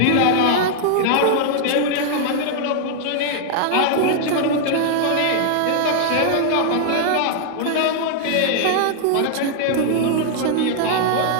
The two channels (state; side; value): different; both; correlation 0.00